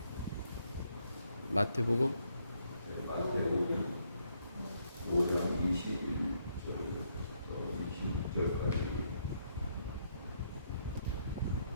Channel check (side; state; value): both; inverted; correlation -0.74